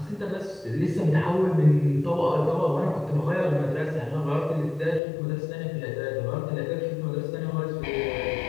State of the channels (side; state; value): right; drops out; at 5.0 s